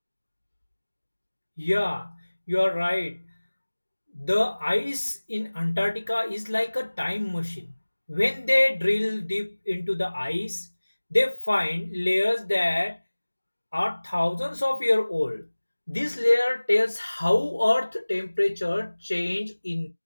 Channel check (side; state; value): both; inverted; correlation -1.00